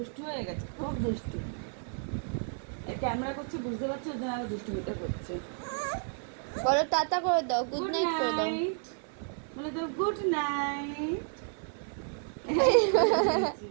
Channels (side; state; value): left; silent; 57 dB below the other